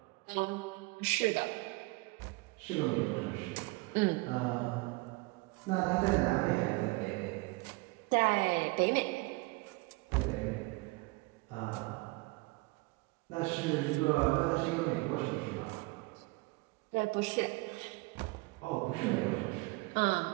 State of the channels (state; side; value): quieter; left; 24.9 dB